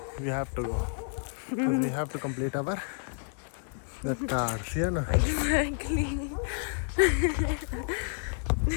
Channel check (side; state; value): right; silent; digital silence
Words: we have to go. Because we have to complete our the cars, yeah, no? Exactly.